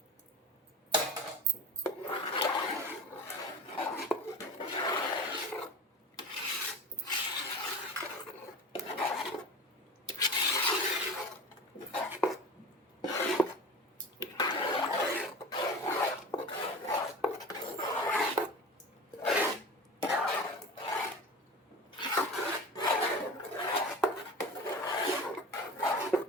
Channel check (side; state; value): both; normal; correlation 0.33